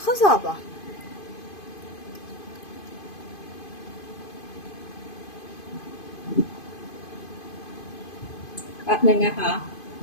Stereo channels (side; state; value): right; late; 2.5 ms